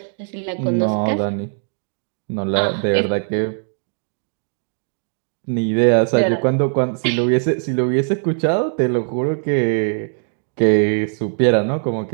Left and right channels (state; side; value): silent; left; digital silence